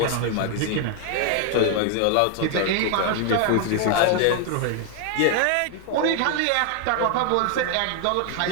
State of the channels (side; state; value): both; different; correlation 0.00